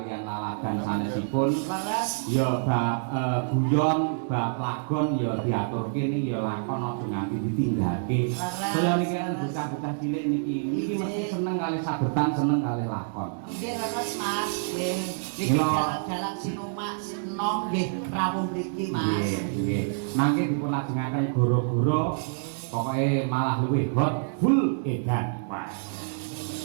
laladan sanesipun. Laras. Ya bab guyon, bab lagon ya diaturke niki ya lakon aja nganti ditinggake. Saya niki kan bocah-bocah cilik niki mesti seneng kali sabetan, seneng kali lakon. Nggih laras Mas. Nggih. Niki Mila. jalan-jalan Sinomak Sino nggih rawuh mriki Mas. Nggih, nggih. Mangke dipulajengaken goro-goro pokoke malah luwih hot full edan. Wah.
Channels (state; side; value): silent; left; digital silence